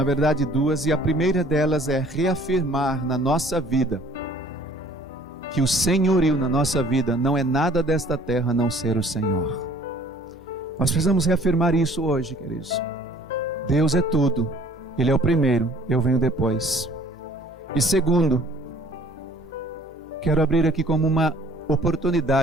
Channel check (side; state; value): both; normal; correlation 0.54